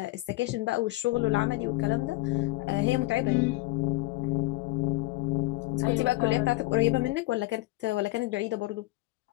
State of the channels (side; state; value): right; quieter; 20.7 dB